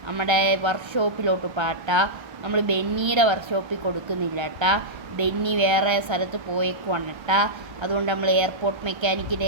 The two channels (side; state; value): left; late; 1.3 ms